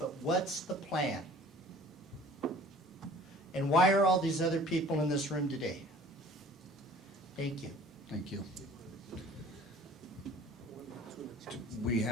what's the plan? And why are all these other people in this room today? Thank you. Thank you. We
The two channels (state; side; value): normal; both; correlation 0.49